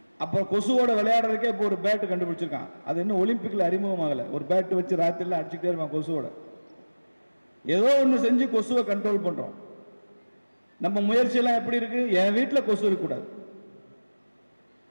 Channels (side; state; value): both; inverted; correlation -1.00